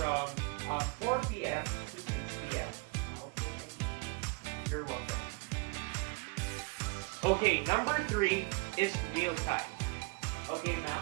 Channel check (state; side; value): quieter; left; 29.7 dB